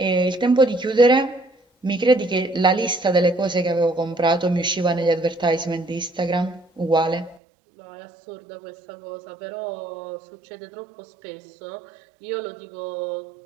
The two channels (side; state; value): left; drops out; at 7.4 s